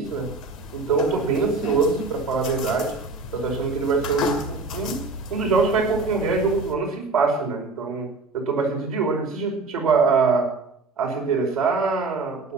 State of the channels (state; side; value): quieter; left; 3.7 dB